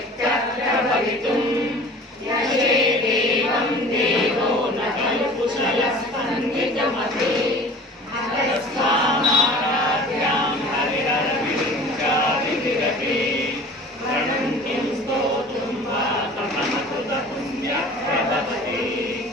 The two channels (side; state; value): both; normal; correlation 0.43